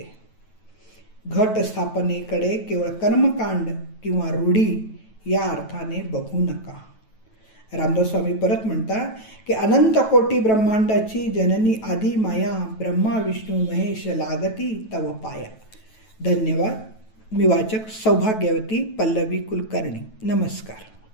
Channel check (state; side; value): late; right; 9.2 ms